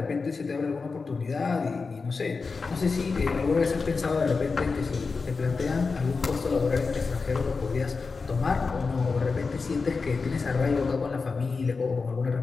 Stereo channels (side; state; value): right; quieter; 4.5 dB